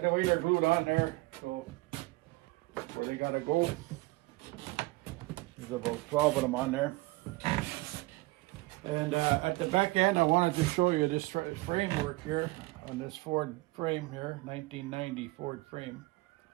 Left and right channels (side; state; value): left; quieter; 22.0 dB